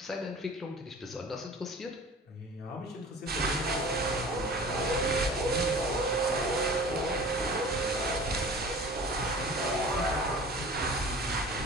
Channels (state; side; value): normal; both; correlation 0.42